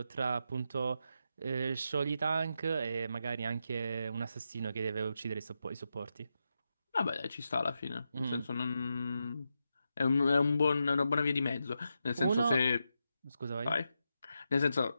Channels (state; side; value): inverted; both; correlation -0.86